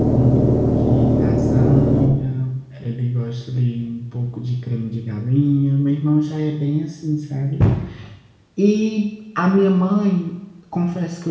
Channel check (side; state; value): both; identical; correlation 1.00